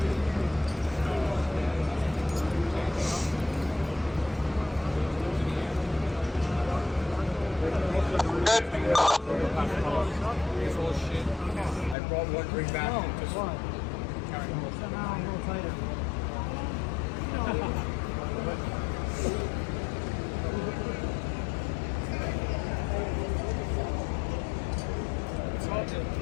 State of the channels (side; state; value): right; drops out; at 12.0 s